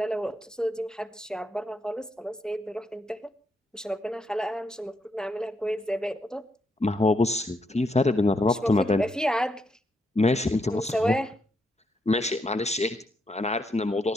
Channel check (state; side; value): normal; both; correlation 0.78